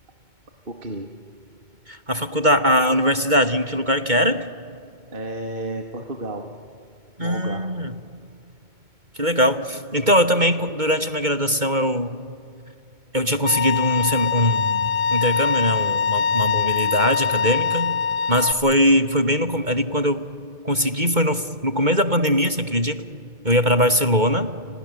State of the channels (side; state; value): left; late; 2.2 ms